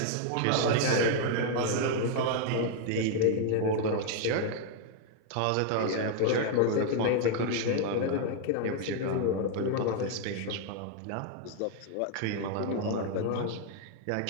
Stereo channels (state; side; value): different; both; correlation 0.00